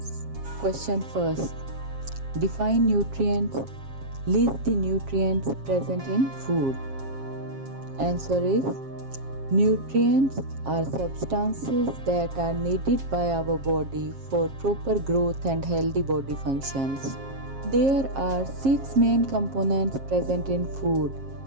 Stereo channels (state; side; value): late; left; 7.4 ms